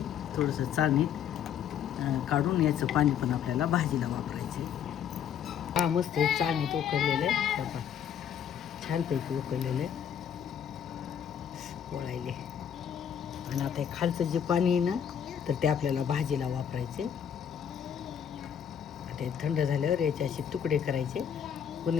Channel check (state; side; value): quieter; right; 8.7 dB